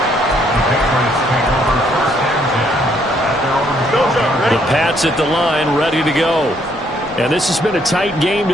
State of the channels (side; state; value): both; normal; correlation 0.69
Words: The Pats at the line, ready to go. And this has been a tight game to